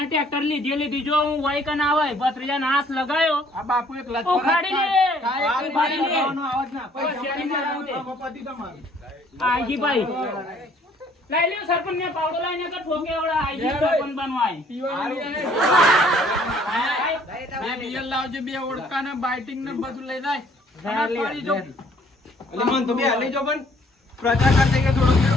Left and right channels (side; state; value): both; normal; correlation 0.60